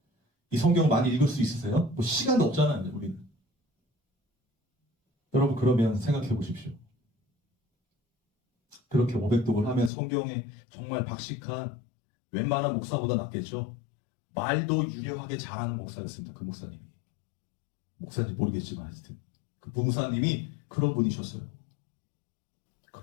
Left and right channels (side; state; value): right; drops out; at 9.9 s